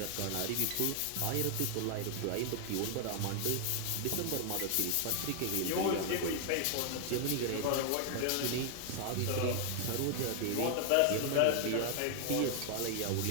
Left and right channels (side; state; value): both; different; correlation 0.00